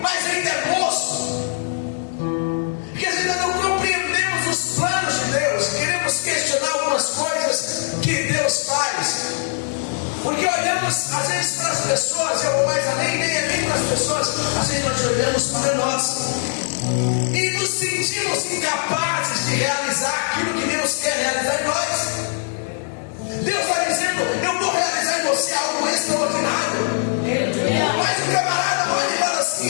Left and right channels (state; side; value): silent; right; 61 dB below the other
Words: mas ainda é moço. Porque ainda não compreendemos os